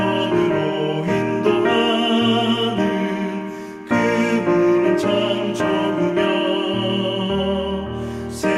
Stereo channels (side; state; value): both; identical; correlation 1.00